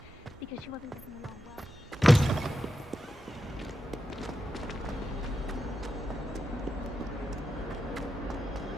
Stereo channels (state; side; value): normal; both; correlation 0.89